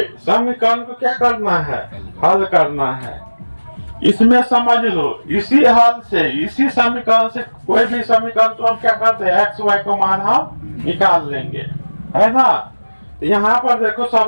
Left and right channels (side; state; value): both; inverted; correlation -1.00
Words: समीकरण को क्या करना है, हल करना है। इसमें समझ लो, इसी हल से, इसी समीकरण से कोई भी समीकरण तो हम क्या करते हैं, एक्स वाई को मान हम निकाल लेंगे, है ना। तो यहाँ पर देखो